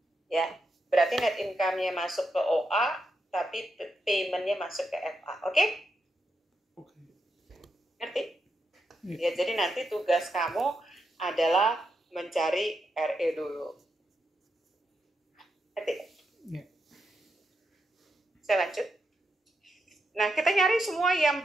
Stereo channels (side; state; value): both; normal; correlation 0.84